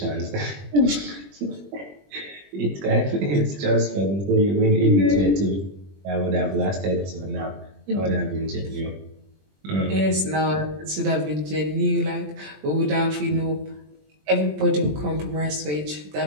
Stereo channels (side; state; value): left; late; 20 ms